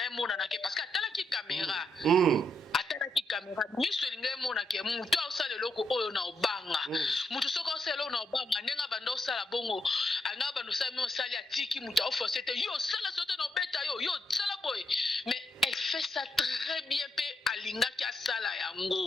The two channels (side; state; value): both; normal; correlation 0.78